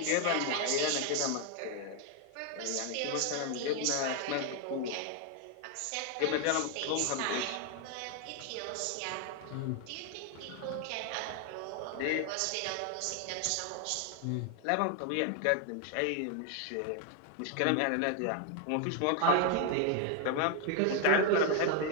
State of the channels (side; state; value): both; different; correlation 0.00